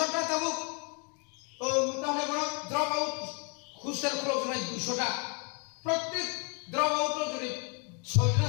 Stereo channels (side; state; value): right; quieter; 35.7 dB